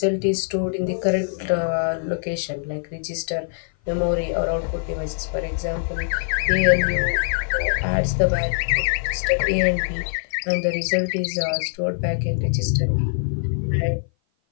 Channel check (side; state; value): right; silent; 56 dB below the other